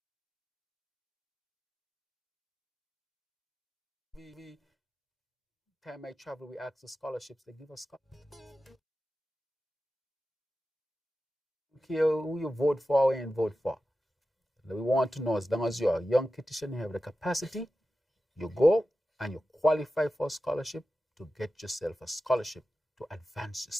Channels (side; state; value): both; normal; correlation 0.93